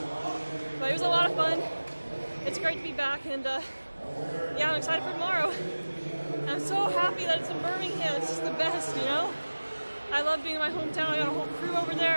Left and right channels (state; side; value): inverted; both; correlation -1.00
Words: But it was a lot of fun. It's great to be back, and yeah, I'm excited for tomorrow. I'm so happy that it's in Birmingham. It's just the best, you know? I love being in my hometown. I got a whole crew over